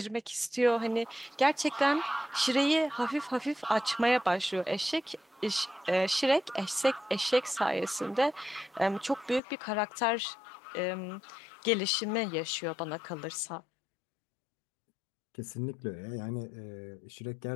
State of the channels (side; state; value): right; drops out; at 9.4 s